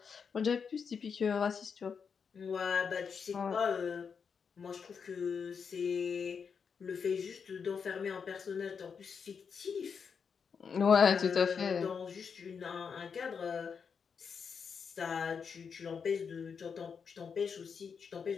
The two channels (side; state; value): right; quieter; 6.2 dB